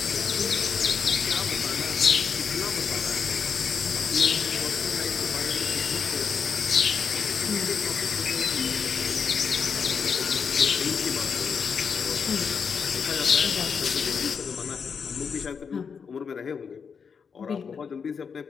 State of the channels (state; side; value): quieter; right; 6.2 dB